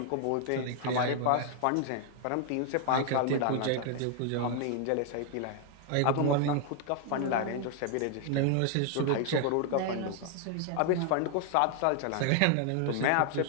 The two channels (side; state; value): both; different; correlation 0.00